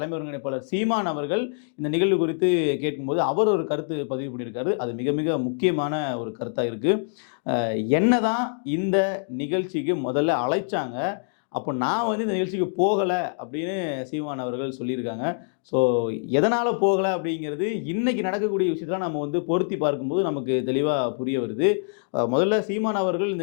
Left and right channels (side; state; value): right; silent; digital silence